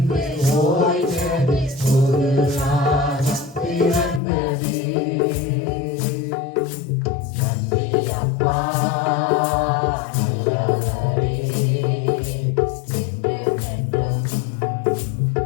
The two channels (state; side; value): drops out; right; at 4.2 s